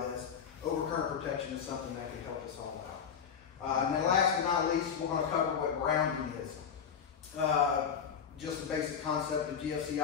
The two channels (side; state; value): right; quieter; 7.3 dB